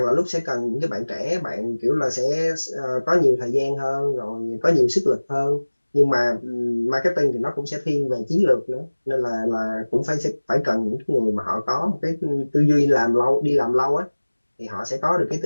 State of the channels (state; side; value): inverted; both; correlation -1.00